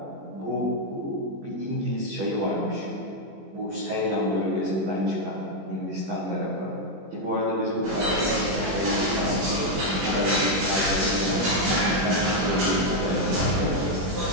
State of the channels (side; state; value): left; late; 21 ms